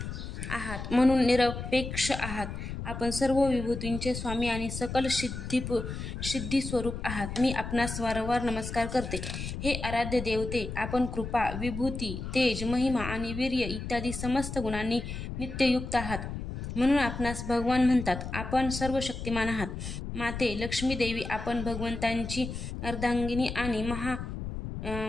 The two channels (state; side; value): noise; left; rumble, 6 dB below the sound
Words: आहात म्हणून निरपेक्ष आहात. आपण सर्व विभूतींचे स्वामी आणि सकल सिद्धी स्वरूप आहात. मी आपणास वारंवार नमस्कार करते. हे आराध्य देवते, आपण कृपा, विभूती, तेज, महिमा आणि वीर्य इत्यादी समस्त गुणांनी नित्ययुक्त आहात, म्हणून आपणास भगवान म्हणतात. आपण सर्व शक्तिमान आहात. माते लक्ष्मी देवी, आपण भगवंतांची अर्धांगिनी आणि